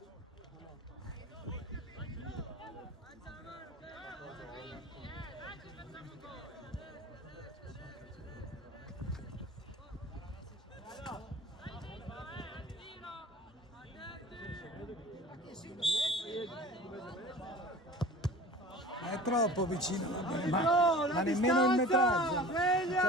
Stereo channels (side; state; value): both; normal; correlation 0.41